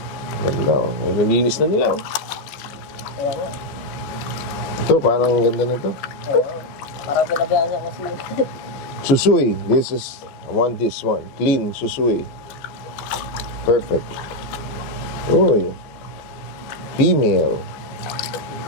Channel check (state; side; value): late; right; 14 ms